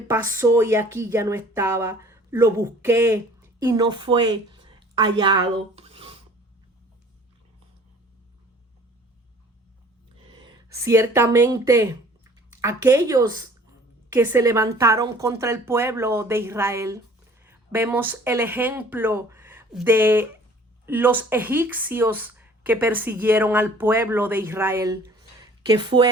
pasó y aquí ya no estaba. Lo busqué y no fue hallado. Ciertamente, aquellos que se levantaron contra el pueblo de Israel, vemos el ejemplo de los egipcios que persiguieron al pueblo de Israel. ¿Qué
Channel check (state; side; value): normal; both; correlation 0.51